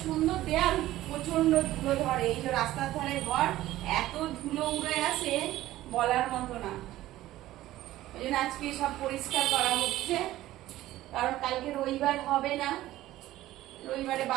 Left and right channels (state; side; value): quieter; left; 15.3 dB